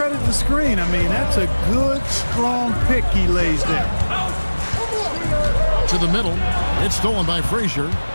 the screen. I mean, that's a good, strong pick he lays there. To the middle. It's stolen by Frazier.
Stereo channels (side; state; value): both; inverted; correlation -1.00